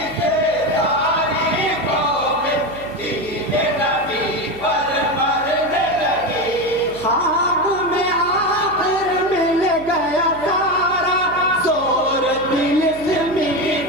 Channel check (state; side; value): noise; right; hum, 17 dB below the sound